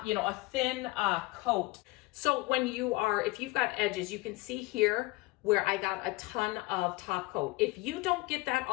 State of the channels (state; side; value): quieter; right; 22.0 dB